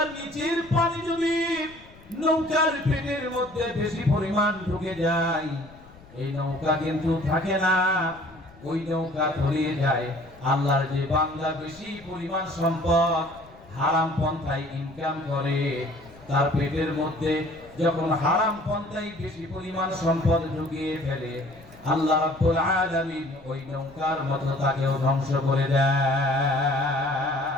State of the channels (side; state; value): left; noise; rumble, 23 dB below the sound